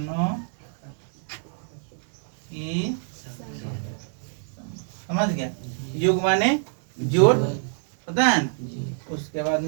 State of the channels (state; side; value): silent; left; digital silence